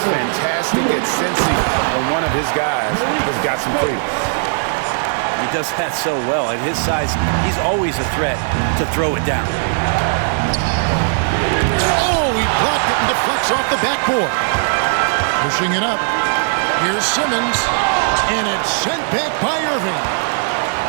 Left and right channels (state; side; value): silent; left; digital silence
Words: fantastic at sensing when one of his guys has got some freedom. He does that so well. At his size, he's always a threat to throw it down. Oh, he blocked it and deflects off the backboard. Pushing it up. Here's Simmons. And it's sent back by Irving.